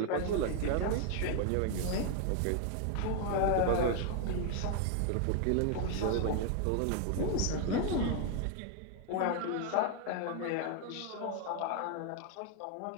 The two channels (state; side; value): different; both; correlation 0.00